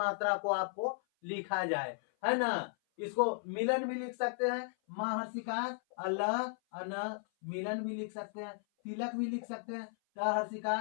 को आपको लिखा जाए, है ना। इसको मिलन भी लिख सकते हैं, महर्षिकार अल्लाह अन मिलन भी लिख सकते हैं। तिलक भी लिख सकते हैं, क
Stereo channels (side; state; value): right; silent; 54 dB below the other